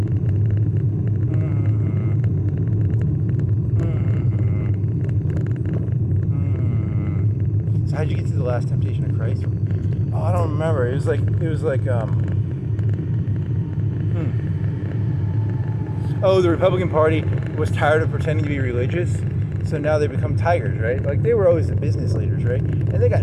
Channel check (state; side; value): identical; both; correlation 1.00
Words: So how'd you get to the Last Temptation of Christ? Oh, I don't remember. It was like Oh, the Republican Party was tired of pretending to be religious, so now they become tigers, right? Like, they were always the business leaders, right? And they